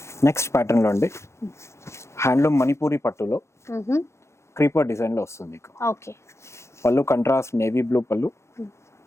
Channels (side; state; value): right; late; 0.13 ms